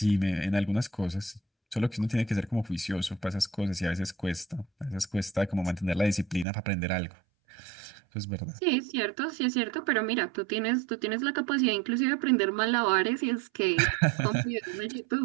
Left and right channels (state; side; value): drops out; left; at 6.5 s